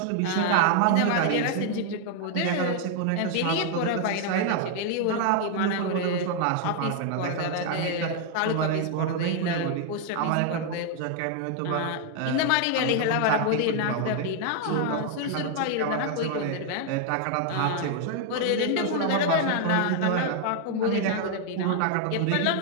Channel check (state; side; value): different; both; correlation 0.00